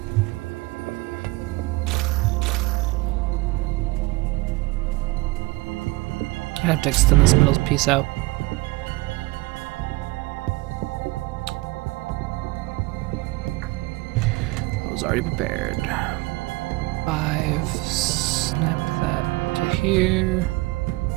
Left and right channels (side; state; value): left; quieter; 22.4 dB